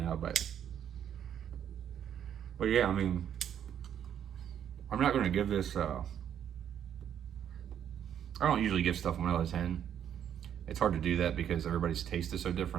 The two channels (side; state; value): left; quieter; 9.4 dB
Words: but yeah, I mean, I'm not going to give this I don't usually give stuff 1 out of 10. It's hard to do that because everybody's taste is so